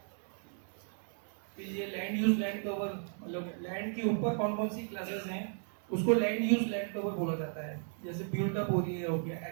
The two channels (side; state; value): left; silent; 54 dB below the other